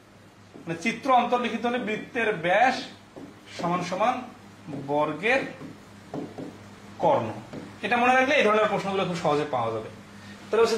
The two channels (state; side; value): identical; both; correlation 1.00